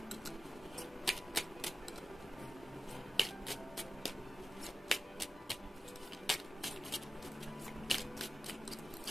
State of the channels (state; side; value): normal; both; correlation 0.92